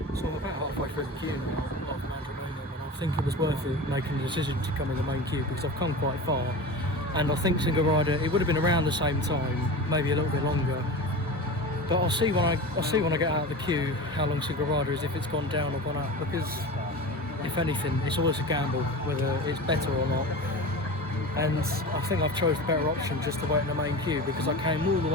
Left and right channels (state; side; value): normal; both; correlation 0.30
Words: I think it was worth it making the decision to come in the main queue because I've come quite far, and I think single rider it would have been around the same time, maybe a little bit longer. But I'll see when I get out of the queue how long single rider is, if it's gone down or gone up, because if anything it's always a gamble whether it's better or not. And I think I've chose the better option just to wait in the main queue because I came all the